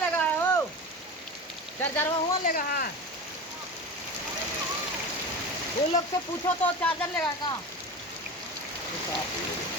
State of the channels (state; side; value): normal; both; correlation 0.28